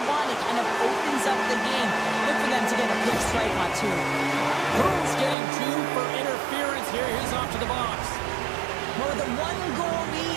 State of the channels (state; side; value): drops out; left; at 5.4 s